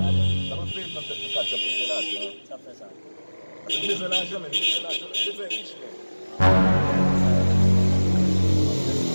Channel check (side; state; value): both; inverted; correlation -1.00